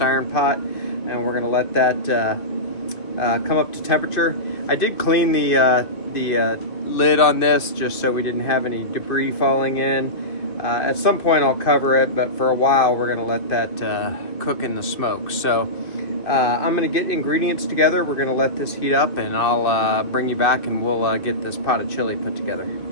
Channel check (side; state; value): right; late; 2.6 ms